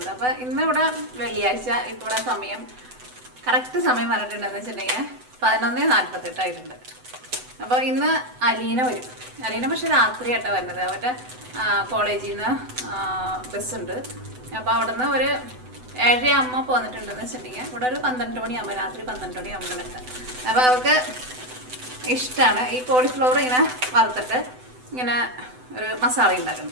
അപ്പോൾ ഇന്ന് ഇവിടെ വെള്ളിയാഴ്ച, ഇപ്പോൾ ഇവിടെ സമയം കറക്റ്റ് സമയം പറഞ്ഞിട്ടുണ്ടെന്ന് വെച്ചിട്ടുണ്ടെങ്കിൽ 11:48 ആയിട്ടുണ്ട്. അപ്പോൾ ഇന്ന് അലീന വരും. അലീന പക്ഷെ രാത്രിയായിട്ടാണ് വരുന്നത്. അവരുടെ കോളേജിൽ നിന്ന് ബസ്സുണ്ട്. അപ്പോൾ അവിടെ നിന്ന് ഒരു 7:30 പോന്നിട്ടുണ്ടെന്ന് വെച്ചിട്ടുണ്ടെങ്കിൽ ഇവിടെ ഒരു 12 മണിയാകുമ്പോൾ, രാത്രി 12 മണിയാകുമ്പോൾ എത്താം. അപ്പോൾ അവർക്ക് ഇഷ്ടമാണ് ഈ കോളിഫ്ലവർ ഇങ്ങനെ വറുത്തിട്ട് ഇങ്ങനെ ഒരു മസാല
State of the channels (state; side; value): late; left; 7.9 ms